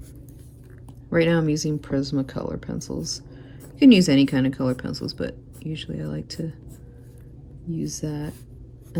Right now I'm using Prismacolor pencils. You can use any kind of color pencils, but usually I like to use that.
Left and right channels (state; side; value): identical; both; correlation 1.00